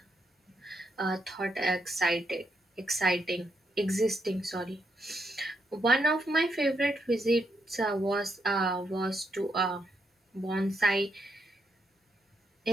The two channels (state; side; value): normal; both; correlation 0.79